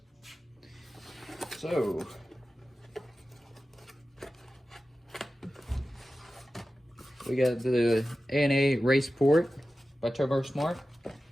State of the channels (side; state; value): both; normal; correlation 0.94